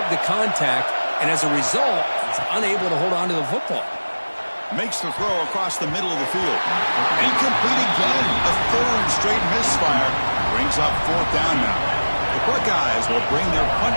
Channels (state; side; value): inverted; both; correlation -1.00